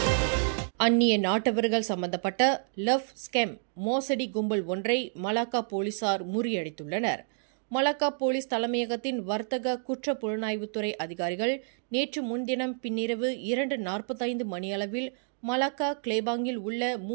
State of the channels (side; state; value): left; silent; digital silence